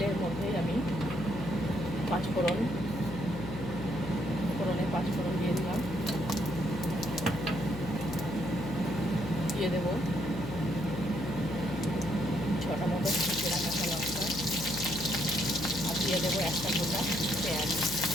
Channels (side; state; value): left; noise; hum, 9 dB below the sound